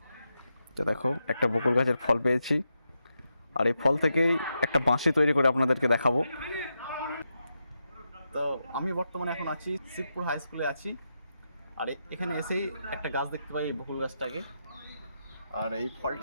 তো দেখো একটা বকুল গাছের ফল পেয়েছি, আর এই ফল থেকেই একটা বাঁশি তৈরি করে আপনাদেরকে দেখাবো। তো আমি বর্তমানে এখন আছি শিবপুর হাই স্কুলে আছি। আর এখানে এসেই একটা গাছ দেখতে পাই, এই বকুল গাছটাকে। আর এই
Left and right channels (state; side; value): inverted; both; correlation -0.86